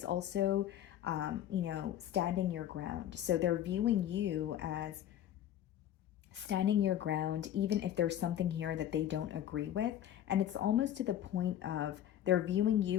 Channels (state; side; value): quieter; right; 11.2 dB